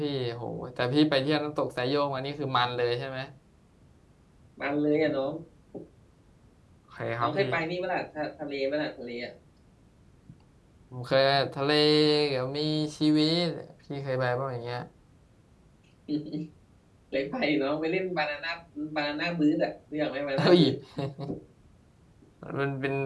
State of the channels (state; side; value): identical; both; correlation 1.00